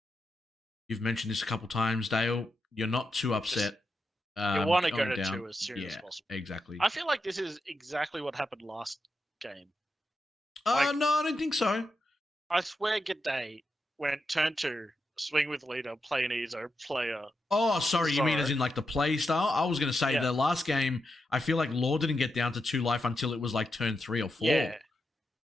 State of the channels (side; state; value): both; normal; correlation 0.87